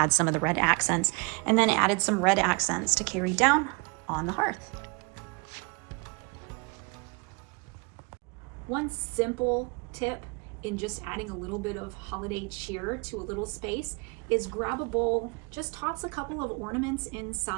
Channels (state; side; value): quieter; left; 30.9 dB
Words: some of the red accents, and then added some red accents to carry down on the hearth. One simple tip in just adding a little bit of holiday cheer to a little space is grab a bowl, just toss a couple of ornaments